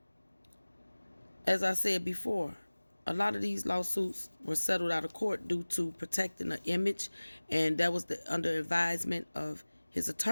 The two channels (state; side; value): inverted; both; correlation -1.00